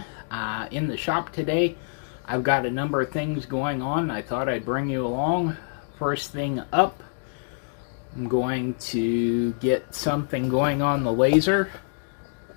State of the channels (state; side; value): silent; right; digital silence